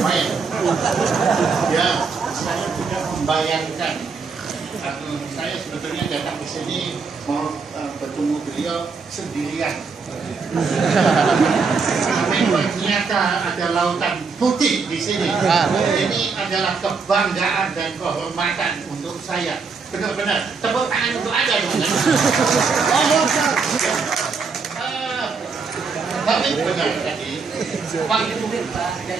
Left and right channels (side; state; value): left; quieter; 5.0 dB